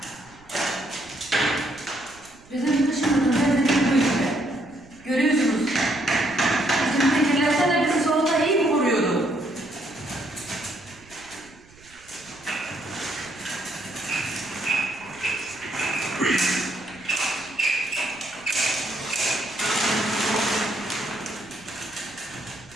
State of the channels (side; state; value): right; noise; rumble, 25 dB below the sound